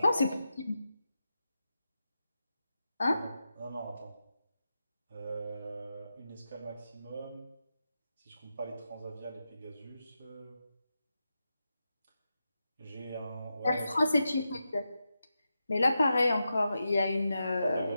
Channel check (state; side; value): inverted; both; correlation -0.89